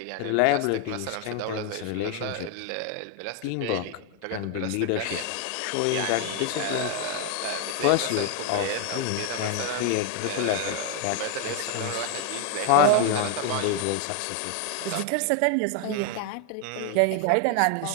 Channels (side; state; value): both; different; correlation 0.01